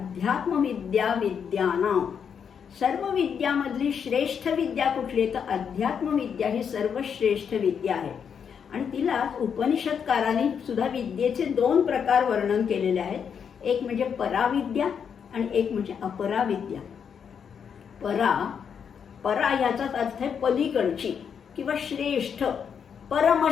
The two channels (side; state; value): right; quieter; 7.2 dB